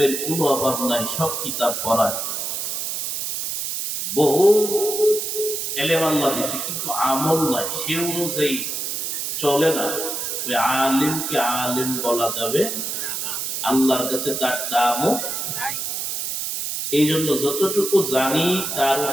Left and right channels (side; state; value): right; noise; hiss, 3 dB below the sound